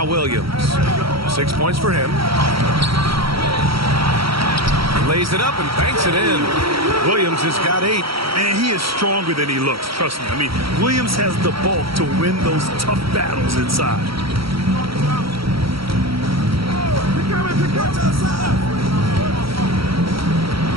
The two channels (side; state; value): left; late; 0.75 ms